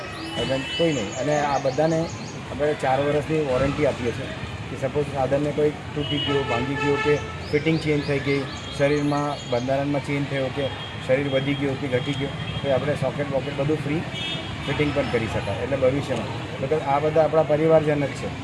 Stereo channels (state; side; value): identical; both; correlation 1.00